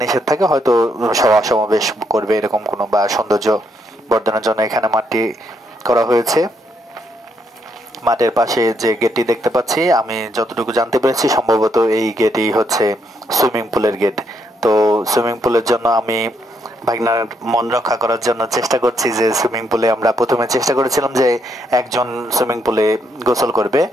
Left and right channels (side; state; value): both; normal; correlation 0.75